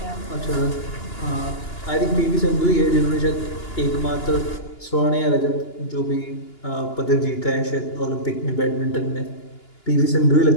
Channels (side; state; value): right; late; 2.9 ms